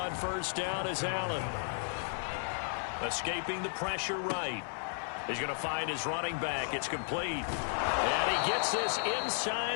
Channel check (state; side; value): silent; right; 55 dB below the other